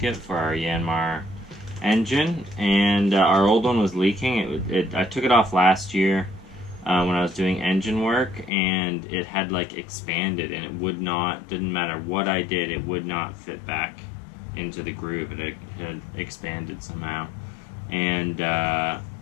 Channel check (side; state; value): right; drops out; at 8.5 s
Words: for our Yanmar engine, and our old one was leaking. I took it off last year when I was doing engine work, and it had like expanded, and it would not, didn't matter what I did, it would not fit back into the groove. It had expanded somehow, and